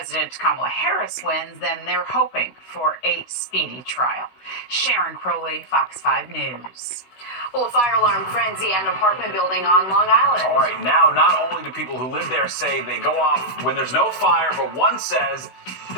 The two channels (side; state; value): right; late; 16 ms